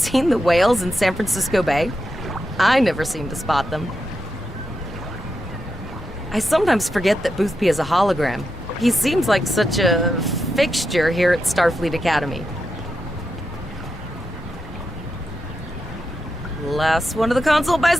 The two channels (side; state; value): both; normal; correlation 0.86